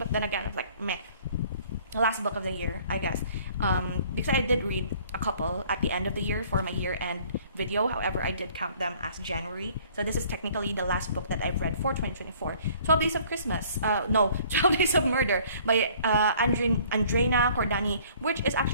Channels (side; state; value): both; inverted; correlation -0.56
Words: then again, it's like meh. Last book of the year, I guess, because I did read a couple at the end of the year for my year-end video. However, I did count them as January, so this is technically the last book that I've read for 2024. 12 Days of Christmas, 12 Days of Murder by Andrena Cordani, which is